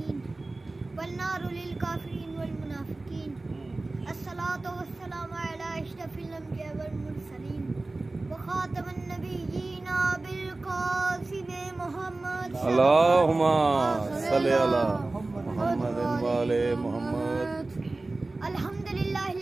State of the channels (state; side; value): quieter; left; 3.1 dB